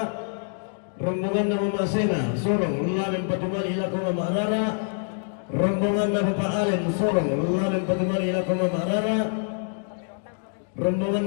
Rombongan Mama Sena Sorong Lualim Banyuwangi lagu Mama Rara. Rombongan Bapak Alen Sorong Lualim Banyuwangi lagu Mama Rara. Rombongan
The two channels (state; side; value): silent; right; 58 dB below the other